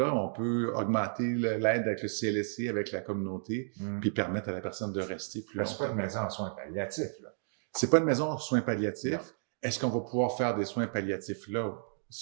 on peut augmenter l'aide avec le CLSC, avec la communauté, puis permettre à la personne de rester plus longtemps. C'est pas une maison en soins palliatifs, là. C'est pas une maison en soins palliatifs. Non. Est-ce qu'on va pouvoir faire des soins palliatifs là?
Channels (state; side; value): silent; left; digital silence